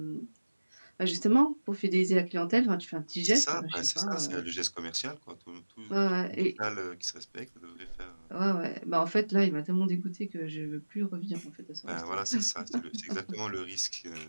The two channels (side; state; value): both; inverted; correlation -1.00